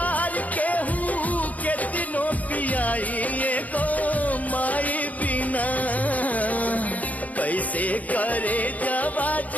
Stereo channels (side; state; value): right; late; 0.074 ms